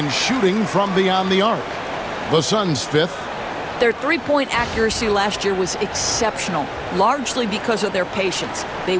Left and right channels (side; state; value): both; identical; correlation 1.00